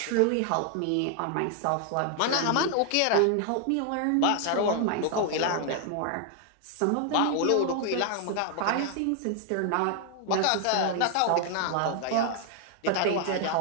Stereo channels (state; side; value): different; both; correlation 0.00